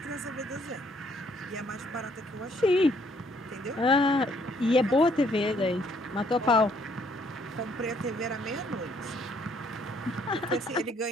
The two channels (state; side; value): normal; both; correlation 0.66